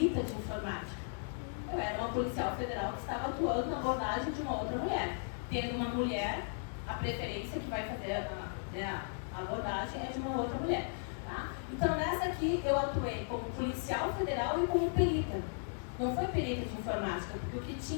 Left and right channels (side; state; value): right; silent; 54 dB below the other